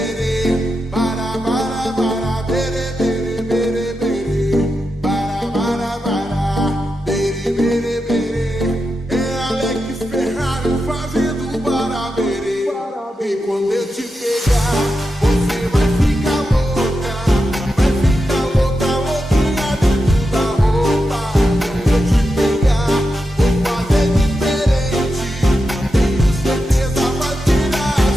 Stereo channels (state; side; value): normal; both; correlation 0.88